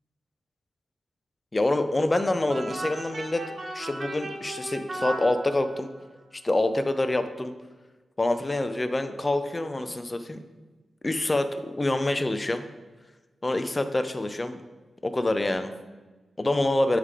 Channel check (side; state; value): both; normal; correlation 0.97